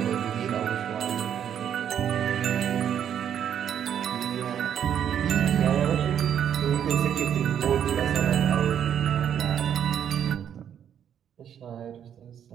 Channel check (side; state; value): left; quieter; 9.1 dB